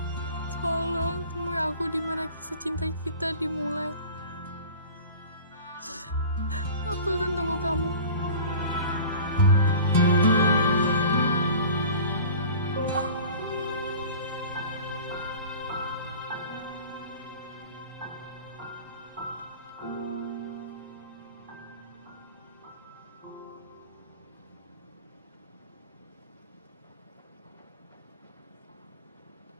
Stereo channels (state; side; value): inverted; both; correlation -0.41